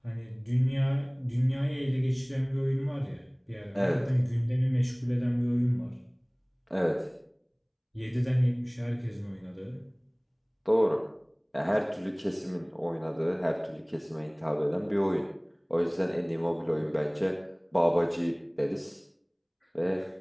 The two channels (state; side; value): identical; both; correlation 1.00